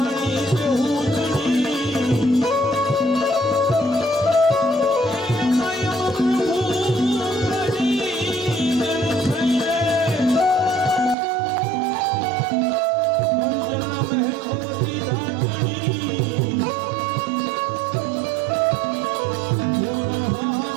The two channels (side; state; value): left; drops out; at 11.2 s